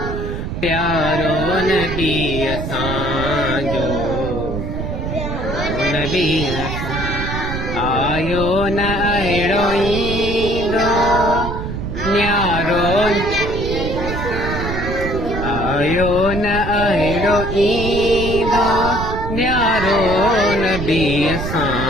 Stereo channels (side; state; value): right; noise; rumble, 5 dB below the sound